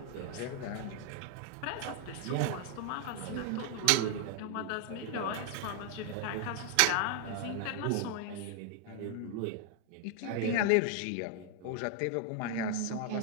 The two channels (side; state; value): both; different; correlation 0.00